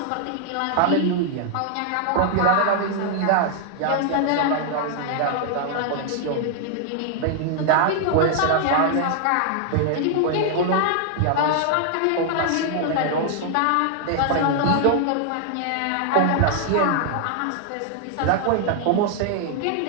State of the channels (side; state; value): both; different; correlation 0.00